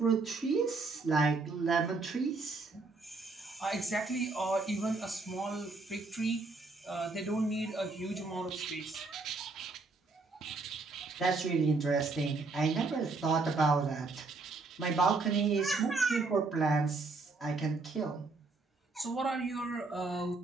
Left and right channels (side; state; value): left; quieter; 3.7 dB